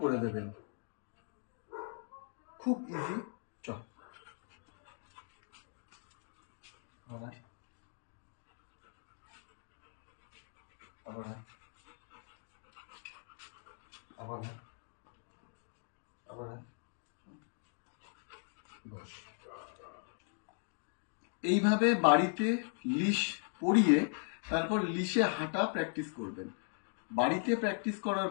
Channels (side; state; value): right; silent; 52 dB below the other